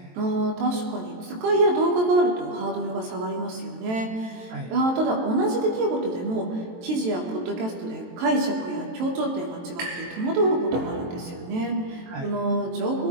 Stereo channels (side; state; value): left; late; 23 ms